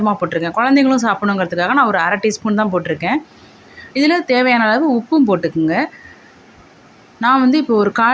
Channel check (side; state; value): both; identical; correlation 1.00